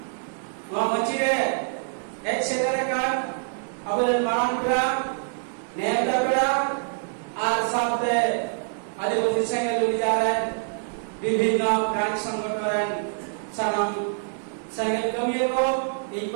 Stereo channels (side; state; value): left; silent; digital silence